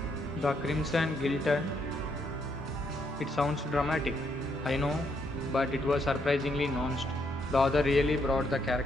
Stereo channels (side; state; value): both; normal; correlation 0.75